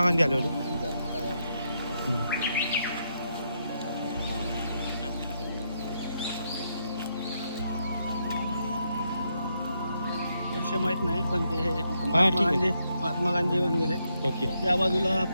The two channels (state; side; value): inverted; both; correlation -0.79